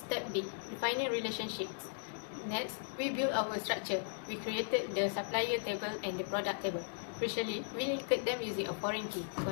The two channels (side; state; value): right; silent; digital silence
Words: B. Defining relationships. Next, we build our structure. We created the supplier table and the product table. Crucially, we linked them using a foreign key